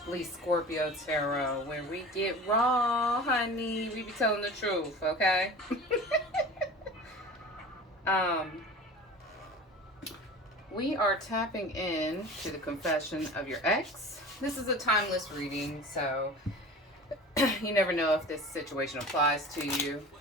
Scorpio Tarot, where we get raw, honey. We be telling the truth, okay? um, we are tapping in to the confession of your ex. This is a timeless reading, so you never know if this situation applies to you.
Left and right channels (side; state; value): both; normal; correlation 0.37